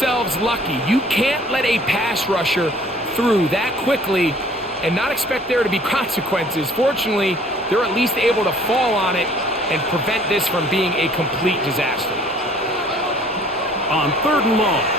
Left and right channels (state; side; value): normal; both; correlation 0.55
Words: lucky. You can't let a pass rusher through that quickly and not expect there to be consequences. Fortunately, they're at least able to fall on it and prevent this from being a complete disaster. On 3rd and long,